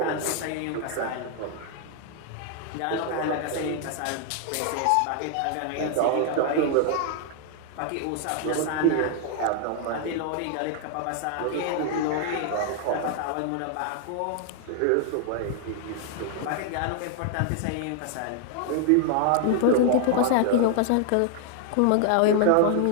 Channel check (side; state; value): both; different; correlation 0.00